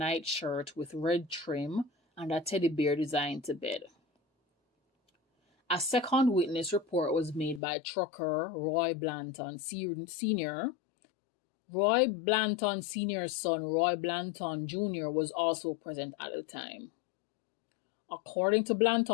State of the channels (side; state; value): right; drops out; at 7.6 s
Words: shirt with red trim and a teddy bear design to bed. A second witness report was made by trucker Roy Blanton Sr. Roy Blanton Sr.'s son, Roy Blanton Jr., was also present at the time. According to